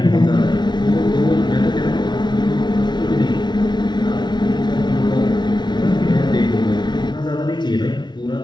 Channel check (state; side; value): late; right; 0.21 ms